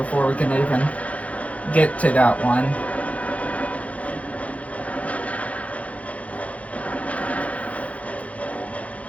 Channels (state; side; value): late; right; 0.066 ms